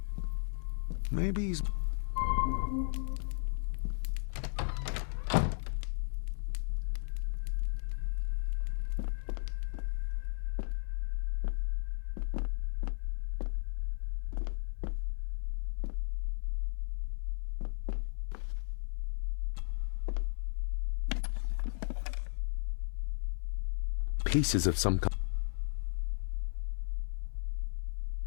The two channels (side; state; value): right; silent; 54 dB below the other